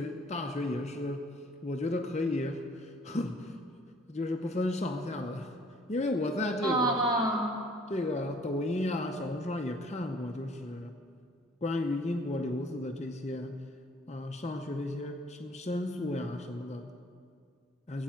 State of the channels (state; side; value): normal; both; correlation 0.57